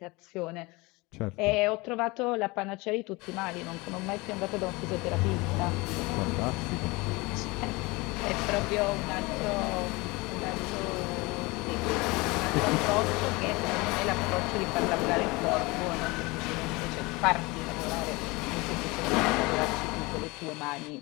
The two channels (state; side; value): quieter; right; 24.1 dB